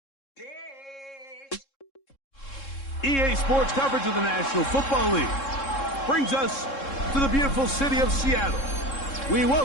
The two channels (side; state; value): right; late; 3.7 ms